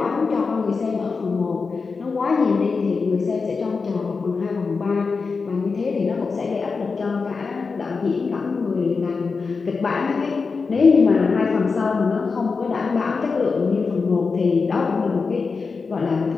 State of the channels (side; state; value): right; quieter; 4.7 dB